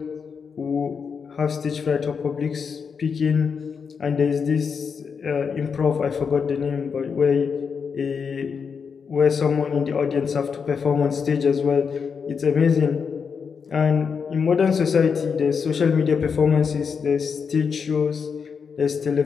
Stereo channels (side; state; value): right; quieter; 6.1 dB